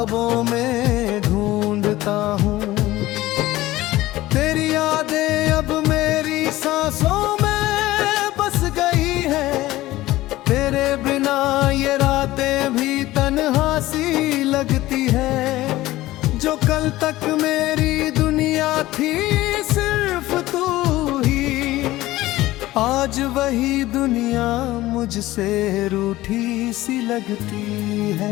में ढूंढता हूँ। तेरी यादें अब मेरी सांसों में बस गई है, तेरे बिना ये रातें भी तन्हा सी लगती है। जो कल तक मेरी दुनिया थी सिर्फ तू ही, आज वही दुनिया मुझसे रूठी सी लगती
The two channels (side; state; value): right; quieter; 16.9 dB